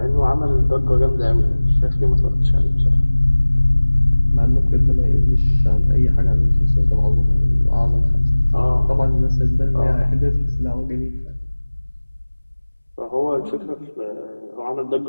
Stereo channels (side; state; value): both; inverted; correlation -1.00